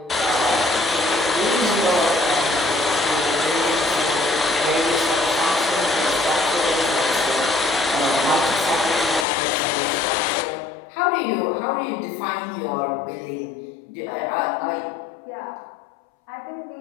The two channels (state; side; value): drops out; right; at 9.2 s